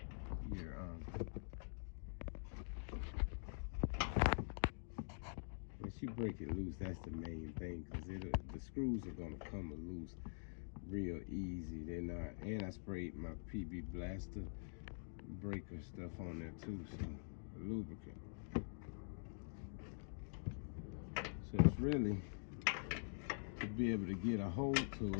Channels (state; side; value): silent; right; digital silence